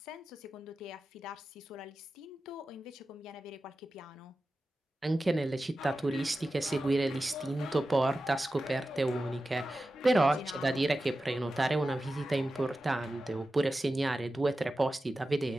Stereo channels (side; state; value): both; normal; correlation 0.93